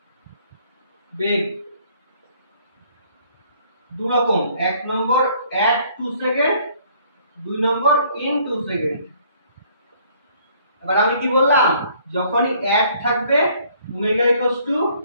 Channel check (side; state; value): both; inverted; correlation -0.61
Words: বেগ দু রকম, এক নম্বর at 2 সেকেন্ড, দুই নম্বর in 2 সেকেন্ড। এবার আমি কি বললাম, যখনই at থাকবে ওমেগা